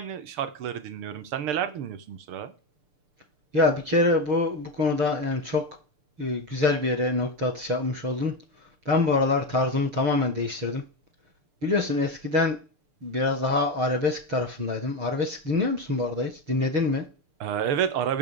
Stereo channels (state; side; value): late; left; 6.7 ms